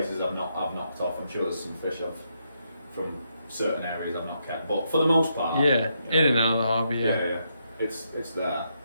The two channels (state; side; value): inverted; both; correlation -0.79